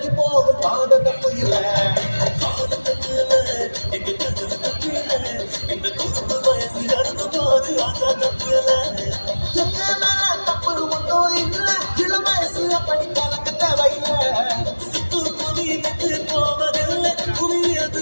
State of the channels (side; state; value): both; inverted; correlation -1.00